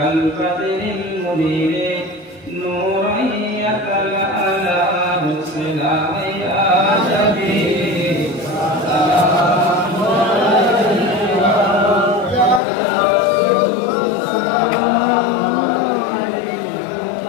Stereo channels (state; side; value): drops out; right; at 12.6 s